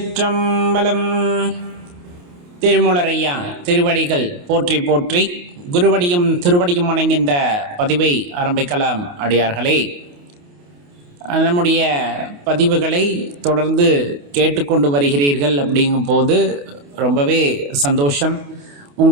திருமூலரையா திருவடிகள் போற்றி போற்றி, குருவடியும் திருவடியும் வணங்கின்ற பதிவை ஆரம்பிக்கலாம். அடியார்களே, நம்முடைய பதிவுகளை தொடர்ந்து கேட்டுக்கொண்டு வருகிறீர்கள். அப்படிங்கும் போது ரொம்பவே சந்தோஷம்.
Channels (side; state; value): left; late; 28 ms